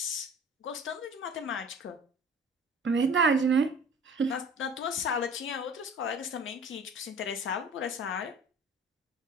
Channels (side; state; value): both; normal; correlation 0.44